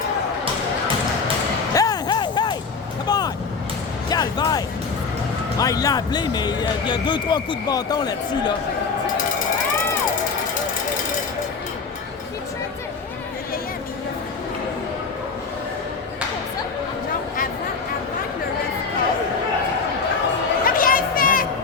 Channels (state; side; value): quieter; right; 4.9 dB